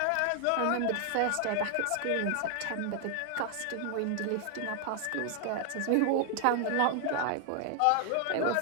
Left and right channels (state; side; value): different; both; correlation 0.00